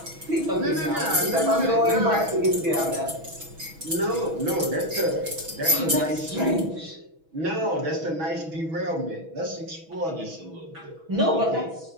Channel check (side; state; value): left; late; 6.2 ms